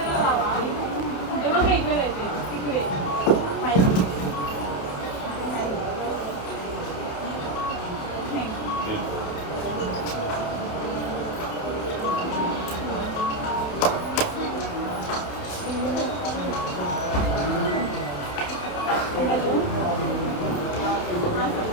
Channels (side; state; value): right; late; 30 ms